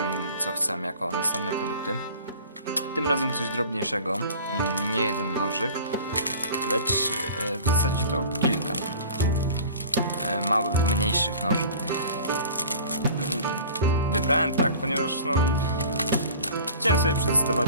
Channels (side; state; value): both; inverted; correlation -0.43